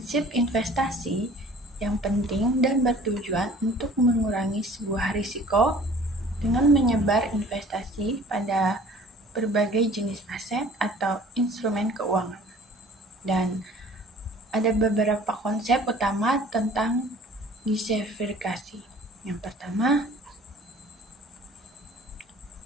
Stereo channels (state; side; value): normal; both; correlation 0.49